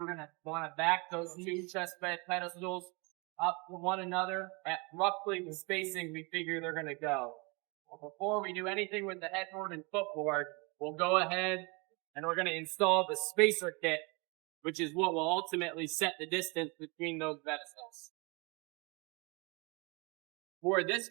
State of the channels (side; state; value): left; quieter; 29.3 dB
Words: going to want to back those two chest bed pedestals up to one another at roughly the spacing we figure they're going to go. Before we do anything with the headboard and footboard, we'll go ahead and we're going to install the spacer kit, which is what will ultimately set the distance between those pedestals. For this